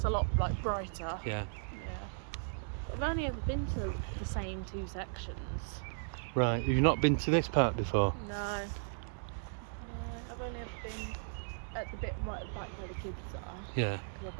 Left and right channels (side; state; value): left; silent; 54 dB below the other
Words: a lot like brighter. Yeah. I've only ever been to the same two sections. Right. Have you not been to this part before? No. I've only ever been at the bit right at the back where the kids are. Yeah. Because I've